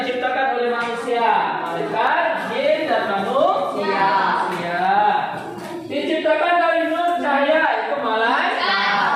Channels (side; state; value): both; identical; correlation 1.00